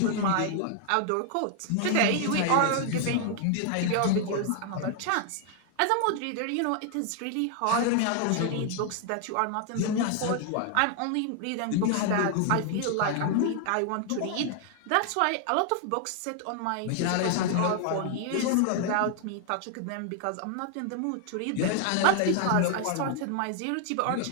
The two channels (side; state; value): both; different; correlation 0.00